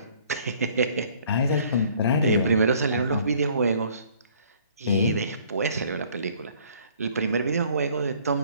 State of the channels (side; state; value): both; inverted; correlation -0.57